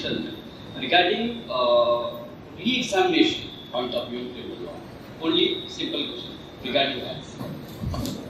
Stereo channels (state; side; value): identical; both; correlation 1.00